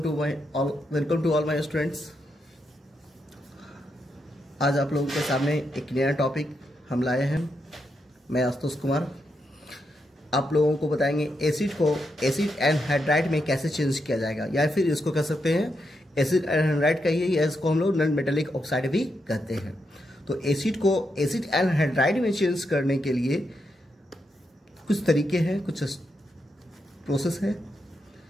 to all my students. आज आप लोगों के सामने एक नया टॉपिक हम लाए हैं। मैं आशुतोष कुमार आप लोगों को बताएंगे एसिड को एसिड एनहाइड्राइड में कैसे चेंज किया जाएगा, या फिर इसको कह सकते हैं एसिड एनहाइड्राइड कहिए, या इसको हम लोग नॉन मेटालिक ऑक्साइड भी कहते हैं। तो एसिड को एसिड एनहाइड्राइड में चेंज करने के लिए कुछ तरीके हैं, कुछ प्रोसेस है।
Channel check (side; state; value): both; normal; correlation 0.83